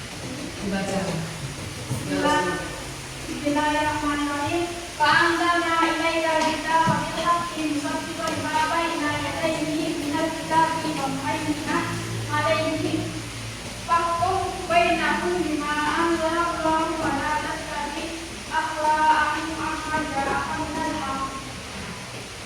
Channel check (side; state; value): both; identical; correlation 1.00